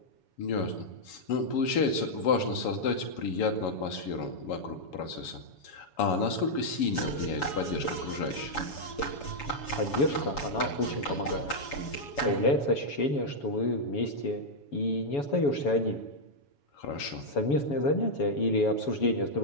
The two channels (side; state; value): right; late; 7.1 ms